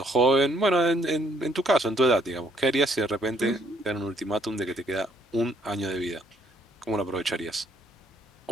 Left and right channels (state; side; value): normal; both; correlation 0.67